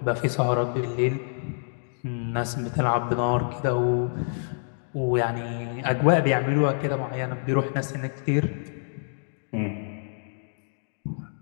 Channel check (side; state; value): right; silent; digital silence